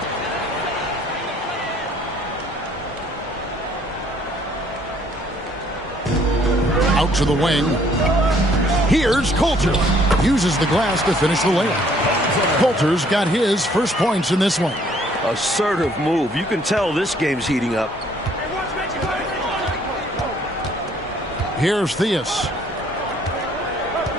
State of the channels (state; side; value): normal; both; correlation 0.62